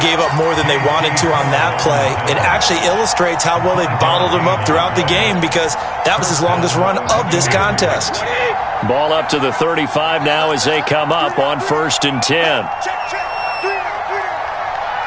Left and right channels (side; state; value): both; identical; correlation 1.00